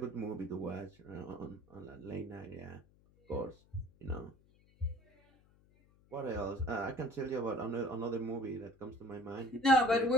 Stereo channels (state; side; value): noise; left; hum, 29 dB below the sound